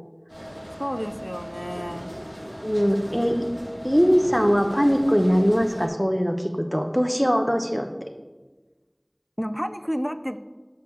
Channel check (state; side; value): identical; both; correlation 1.00